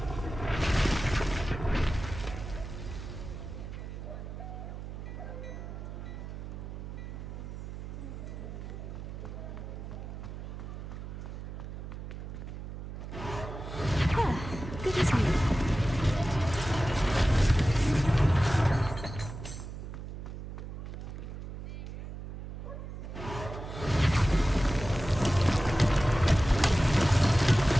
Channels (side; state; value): right; noise; hum, 9 dB below the sound